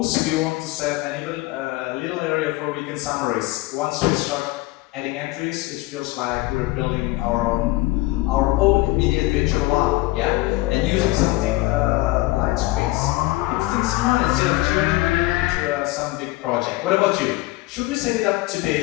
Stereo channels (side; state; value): right; quieter; 19.8 dB